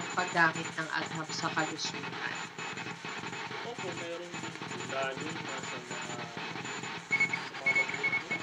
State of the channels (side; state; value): both; identical; correlation 1.00